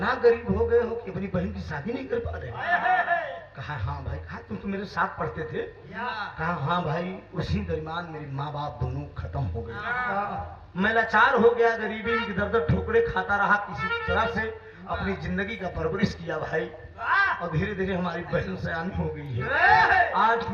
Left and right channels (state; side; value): identical; both; correlation 1.00